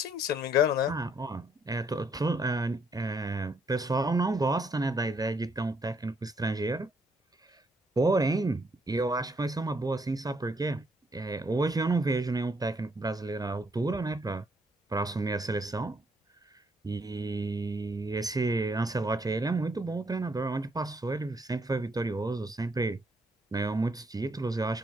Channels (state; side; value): normal; both; correlation 0.71